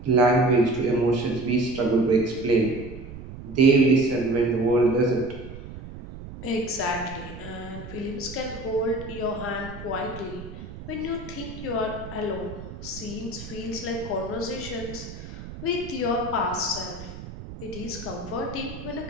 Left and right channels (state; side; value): noise; right; rumble, 12 dB below the sound